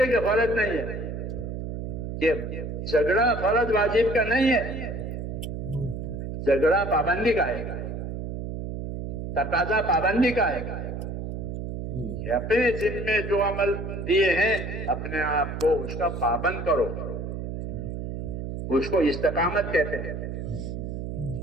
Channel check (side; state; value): right; noise; hum, 5 dB below the sound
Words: کہ فرض نہیں ہے، کہ جھگڑا فرض واجب کا نہیں ہے، جھگڑا پابندی کا ہے، تقاضا پابندی کا ہے کہ اپنے ذمے جو عمل دیے ہیں اپنے آپ کو اس کا پابند کرو، اس کو استقامت کہتے ہیں۔